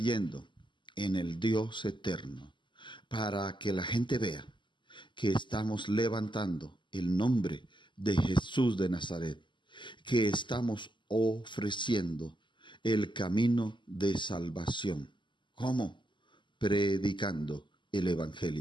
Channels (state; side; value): late; right; 0.23 ms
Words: en el Dios eterno, para que la gente vea que estamos levantando el nombre de Jesús de Nazaret, que estamos ofreciendo el camino de salvación. ¿Cómo? Predicando el